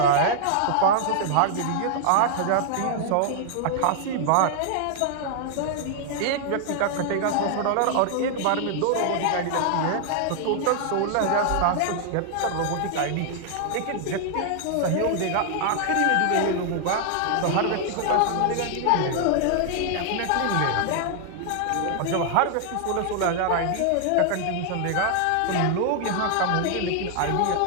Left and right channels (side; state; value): both; different; correlation 0.00